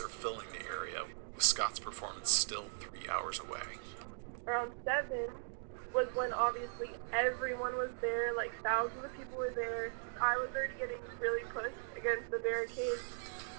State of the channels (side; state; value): left; silent; digital silence